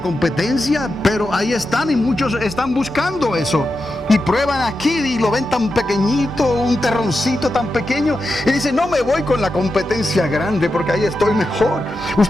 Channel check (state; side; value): normal; both; correlation 0.89